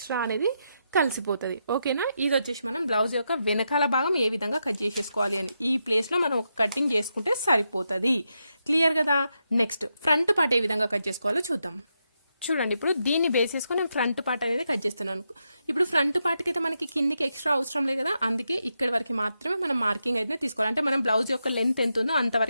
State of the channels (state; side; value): inverted; both; correlation -0.84